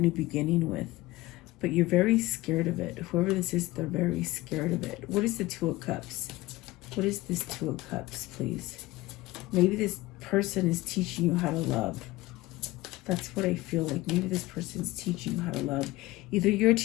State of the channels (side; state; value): right; quieter; 19.0 dB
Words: beginning with. But you're very scared of it. Whoever this is, they're very scared of it. What is the Two of Cups? What is this Two of Cups, please? Maybe this person is teaching you how to love. That's what I feel like. Maybe this person's teaching you how to love. Either you're